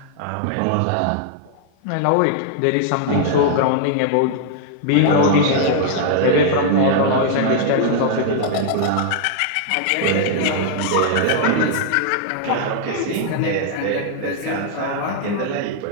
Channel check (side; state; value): both; different; correlation -0.01